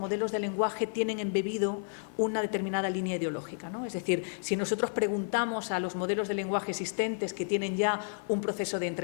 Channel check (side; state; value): right; silent; digital silence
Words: de lenguaje tienen embebido una determinada línea ideológica, ¿no? Es decir, si nosotros preguntamos a los modelos de lenguaje existentes que tienen ya un proceso de